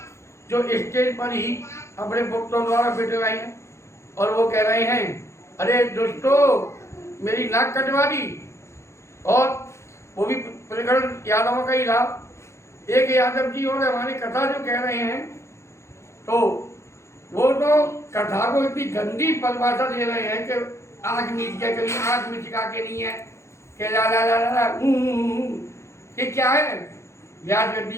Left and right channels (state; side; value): late; right; 0.14 ms